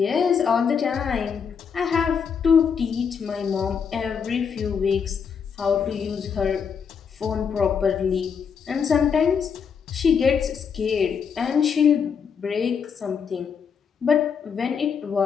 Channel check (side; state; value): right; quieter; 6.6 dB